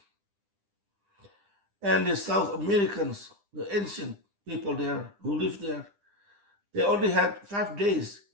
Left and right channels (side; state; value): left; late; 9.9 ms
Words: And the South Americans, the ancient people there who lived there, they only had 5 days